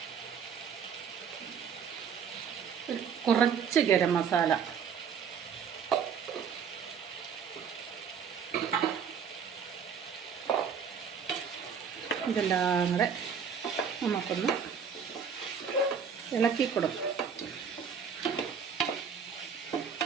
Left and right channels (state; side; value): quieter; left; 6.9 dB